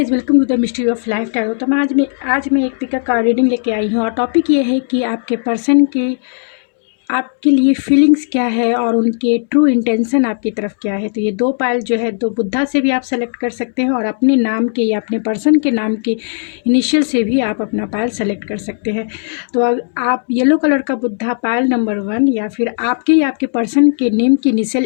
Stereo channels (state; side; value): silent; right; digital silence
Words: welcome to the mystery of life tarot. तो मैं एक पिक का रीडिंग लेके आई हूँ और टॉपिक ये है कि आपके पर्सन की आपके लिए फीलिंग्स क्या है और उनके ट्रू इंटेंशन आपकी तरफ क्या है। तो ये दो पायल जो है, दो बुद्धा से भी आप सेलेक्ट कर सकते हैं और अपने नाम के या अपने पर्सन के नाम के इनिशियल से भी आप अपना पायल सेलेक्ट कर सकते हैं। तो आप येलो कलर का बुद्धा पायल नंबर 1 या फिर आपके या आपके पर्सन के नेम की